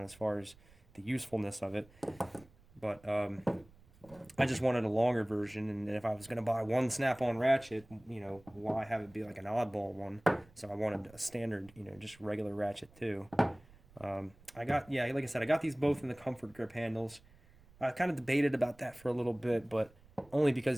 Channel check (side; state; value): right; noise; rumble, 26 dB below the sound